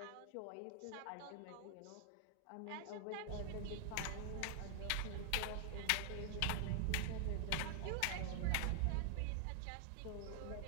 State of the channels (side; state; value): both; different; correlation 0.00